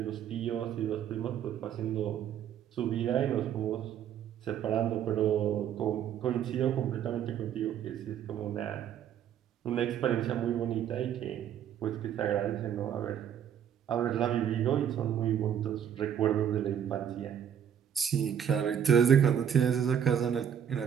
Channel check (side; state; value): left; quieter; 9.1 dB